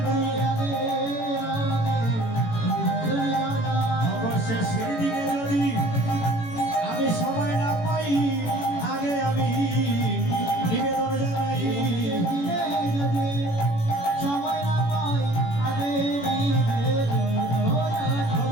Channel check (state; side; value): late; right; 18 ms